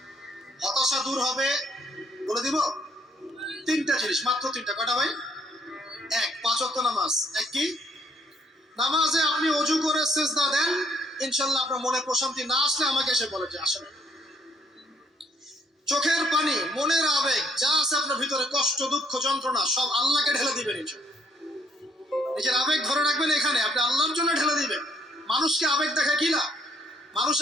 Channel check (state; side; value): normal; both; correlation 0.67